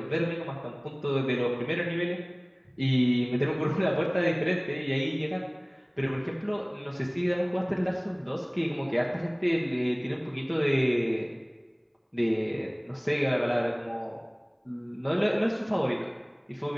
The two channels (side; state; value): both; identical; correlation 1.00